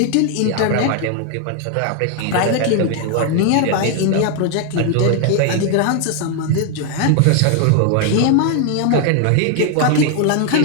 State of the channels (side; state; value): both; different; correlation 0.00